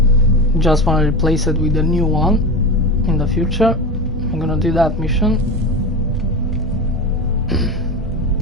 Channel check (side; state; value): both; normal; correlation 0.24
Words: Just want to replace it with a new one in the future. I'm gonna do that mission.